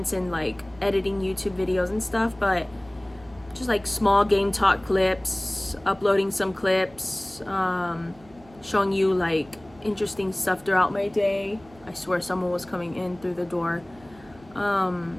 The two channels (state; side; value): noise; right; hum, 25 dB below the sound